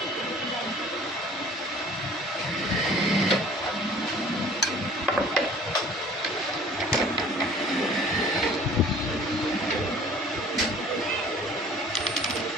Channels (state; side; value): normal; both; correlation 0.50